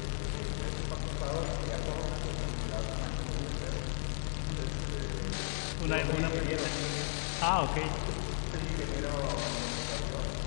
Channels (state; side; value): silent; right; digital silence